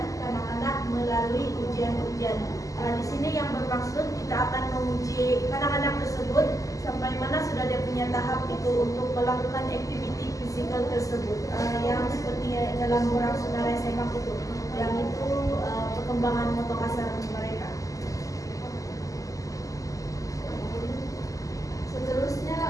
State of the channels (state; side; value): late; right; 0.16 ms